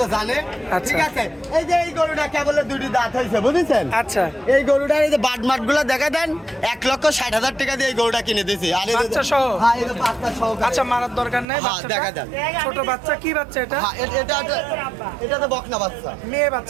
জানে। আচ্ছা। ঠিক আছে, এই যে এই গরুটা কেবলে দুটি দাঁত হয়েছে বুঝেছেন। আচ্ছা, এই গরুটার এই যে বাট মাট গুলো দেখা দেন, 1,60,000 টাকা দিয়ে এই গরুটা কিনে দিয়েছি। আর এই যে- বাচ্চা সহ? হ্যাঁ, এই যে বাচ্চা সহ। আচ্ছা, মারার দরকার নেই। হ্যাঁ, বাচ্চাটা দেখা যান। ছোট বাচ্চা, কি বাচ্চা এটা? হ্যাঁ, এটা তো বকনা বাচ্চা, মেয়ে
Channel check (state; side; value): drops out; left; at 11.5 s